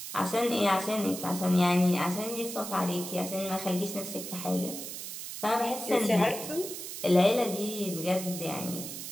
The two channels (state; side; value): noise; right; hiss, 8 dB below the sound